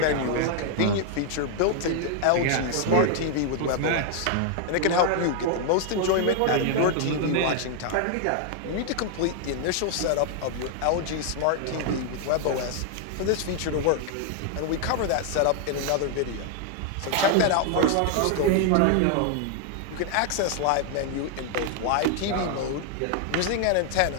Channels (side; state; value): both; different; correlation 0.00